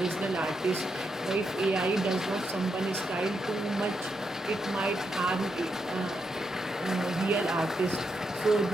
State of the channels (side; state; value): both; normal; correlation 0.82